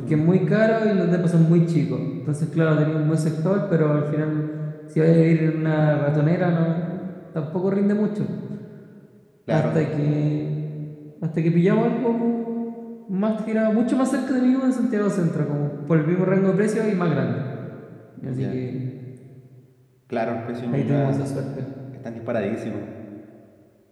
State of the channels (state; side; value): identical; both; correlation 1.00